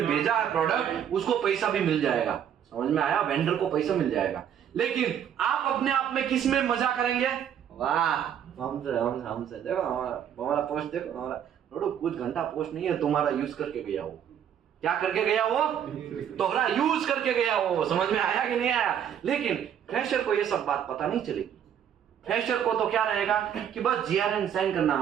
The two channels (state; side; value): quieter; left; 9.2 dB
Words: भेजा है प्रोडक्ट उसको पैसा भी मिल जाएगा। समझ में आया? वेंडर को पैसा मिल जाएगा। लेकिन आप अपने आप में किस में मजा करेंगे? वाह हमसे देखो हमारा पोस्ट देखो, हमारा कुछ घंटा पोस्ट नहीं है, तुम्हारा यूज करके गया वो। क्या करके गया वो? तोहरा यूज करके गया वो। समझ में आया कि नहीं आया? लेकिन फ्रेशर को ये सब बात पता नहीं चलेगी। फ्रेशर को तो क्या रहेगा कि बस GRN साइन करना